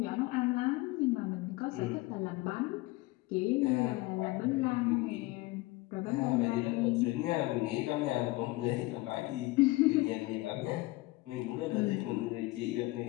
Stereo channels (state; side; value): quieter; right; 20.8 dB